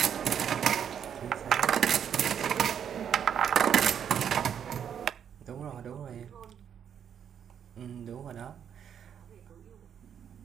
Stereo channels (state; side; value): quieter; left; 8.5 dB